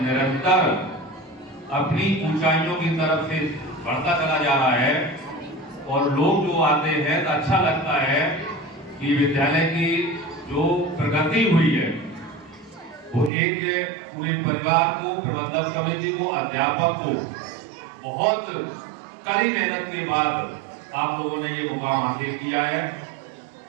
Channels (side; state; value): left; drops out; at 13.3 s